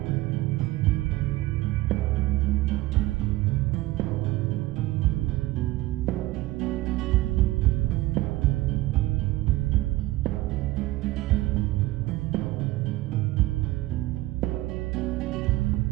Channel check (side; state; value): left; quieter; 18.3 dB